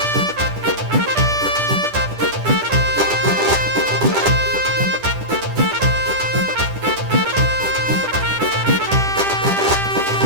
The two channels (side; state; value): left; late; 10 ms